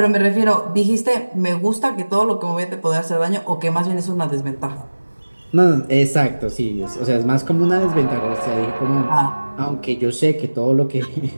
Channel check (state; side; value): inverted; both; correlation -1.00